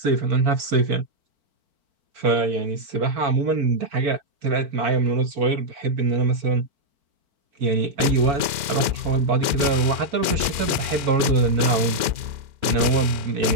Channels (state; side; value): late; left; 4.5 ms